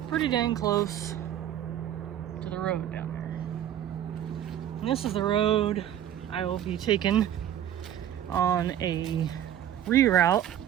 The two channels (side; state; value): left; quieter; 11.0 dB